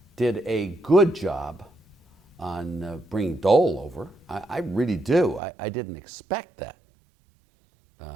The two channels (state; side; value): drops out; left; at 5.4 s